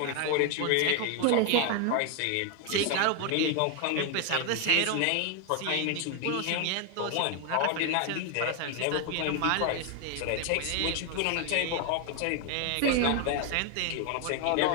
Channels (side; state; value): both; different; correlation 0.01